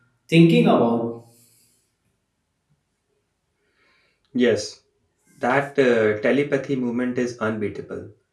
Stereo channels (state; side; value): identical; both; correlation 1.00